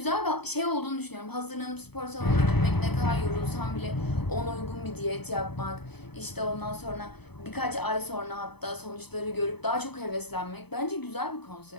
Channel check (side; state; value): right; late; 0.98 ms